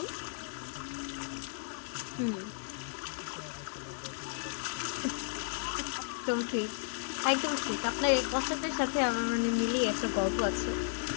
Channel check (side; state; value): right; silent; digital silence